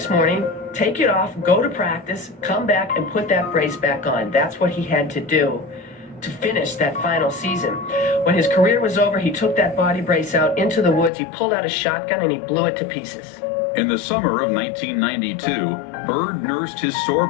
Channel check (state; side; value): drops out; right; at 11.1 s